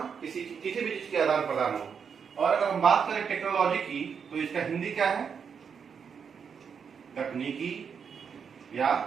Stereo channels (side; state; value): left; quieter; 6.7 dB